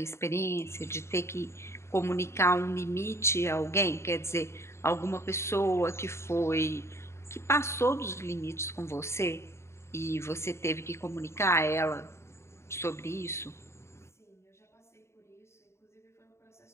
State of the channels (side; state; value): right; late; 0.13 ms